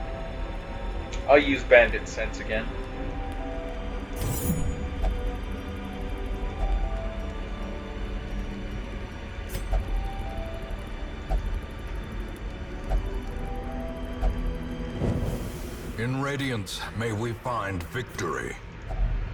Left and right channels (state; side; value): identical; both; correlation 1.00